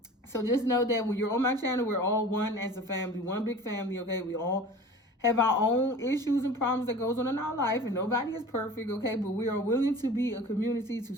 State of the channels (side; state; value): both; normal; correlation 0.40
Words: So just know that when you're on my channel, we're all one as a family, one big family, okay? We all have our own issues and problems that goes on in our life, and nobody is perfect, okay? But we are willing to be a community to